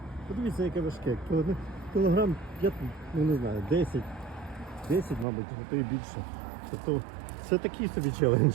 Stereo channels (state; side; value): drops out; left; at 5.2 s